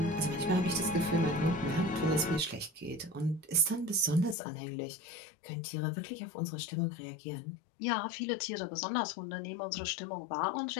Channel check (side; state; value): right; drops out; at 4.4 s